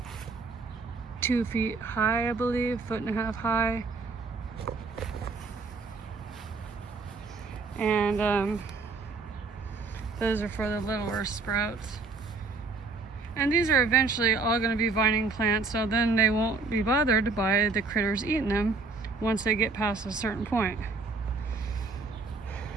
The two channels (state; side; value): quieter; left; 4.1 dB